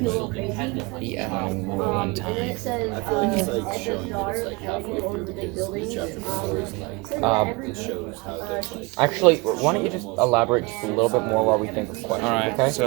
but one time. Actually, why don't you just elaborate just a little bit more while we think of questions? Alright, okay?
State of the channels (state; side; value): quieter; left; 25.7 dB